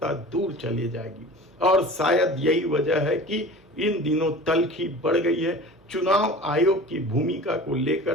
दूर चली जाएगी। और शायद यही वजह है कि इन दिनों तल्खी बढ़ गई है। चुनाव आयोग की भूमिका को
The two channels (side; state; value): both; normal; correlation 0.39